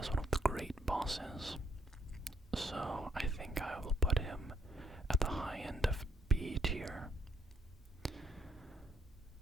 one of the great bosses. So I think I will put him at the high end of B tier,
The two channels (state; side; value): normal; both; correlation 0.70